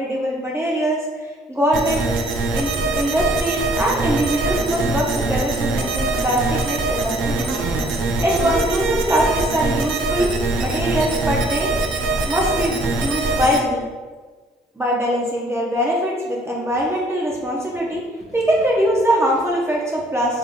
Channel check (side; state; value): both; normal; correlation 0.61